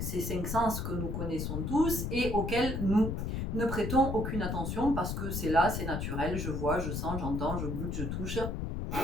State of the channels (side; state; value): left; noise; rumble, 2 dB below the sound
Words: ces 5 sens que nous connaissons tous et auxquels nous ne prêtons aucune attention parce que c'est là, c'est naturel, je vois, je sens, j'entends, je goûte, je touche,